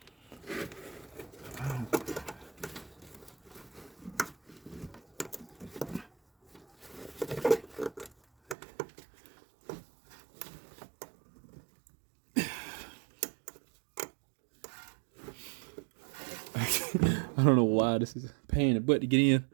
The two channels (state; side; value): drops out; left; at 8.6 s